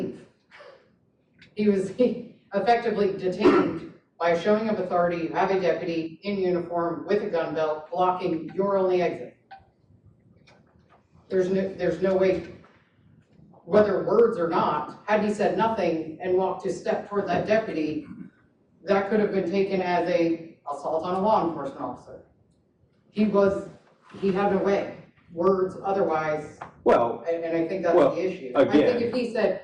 He was effectively detained by a showing of authority. You have a deputy in uniform with a gun belt blocking your only exit. There's no way, whether words or not, had he said nothing and walked a step toward that deputy, that could have been taken as a assault on a law enforcement officer. He had no way. Words otherwise. Well, and I think that's the issue. Again, I think if he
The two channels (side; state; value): both; identical; correlation 1.00